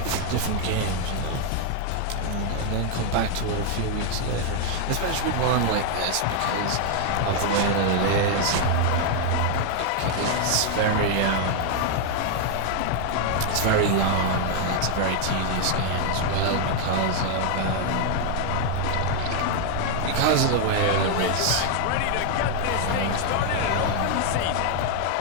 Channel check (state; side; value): different; both; correlation 0.00